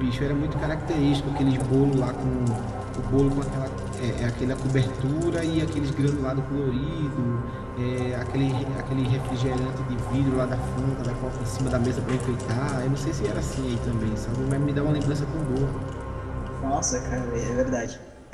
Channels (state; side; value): identical; both; correlation 1.00